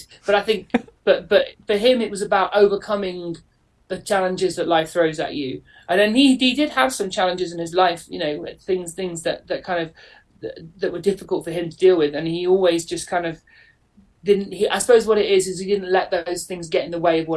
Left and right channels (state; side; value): identical; both; correlation 1.00